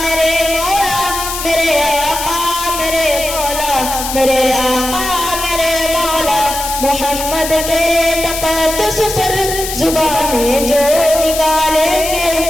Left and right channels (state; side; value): noise; left; hiss, 6 dB below the sound